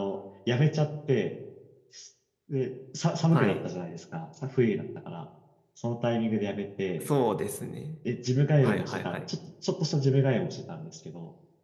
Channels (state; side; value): identical; both; correlation 1.00